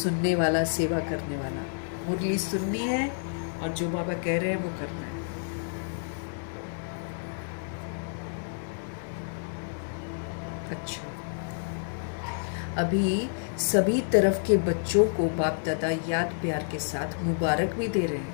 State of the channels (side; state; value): right; silent; digital silence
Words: वाला, सेवा करने वाला। मुरली सुननी है और जो बाबा कह रहे हैं वो करना है। अच्छा, अभी सभी तरफ के बच्चों को बाप दादा याद प्यार के साथ मुबारक भी दे रहे